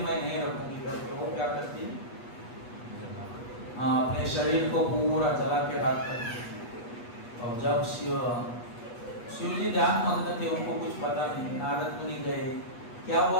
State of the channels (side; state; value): right; late; 8.3 ms